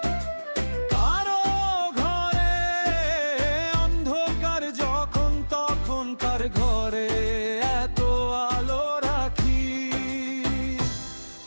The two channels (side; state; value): both; inverted; correlation -1.00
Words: কারো ঘরে অন্ধকার যখন, তখন কার ঘরে এত আলো রাখি।